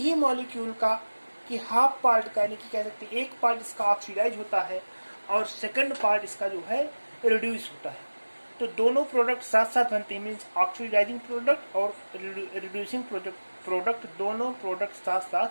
मॉलिक्यूल का कि हाफ पार्ट का, यानी कि कह सकते हैं एक पार्ट इसका ऑक्सीडाइज होता है और सेकंड पार्ट इसका जो है रिड्यूस होता है। तो दोनों प्रोडक्ट साथ साथ बनते हैं, मीन्स ऑक्सीडाइजिंग प्रोडक्ट और रिड्यूसिंग प्रोडक्ट दोनों प्रोडक्ट साथ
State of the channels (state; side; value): inverted; both; correlation -1.00